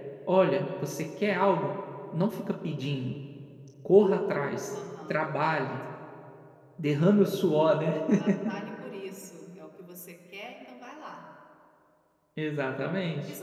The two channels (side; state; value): both; identical; correlation 1.00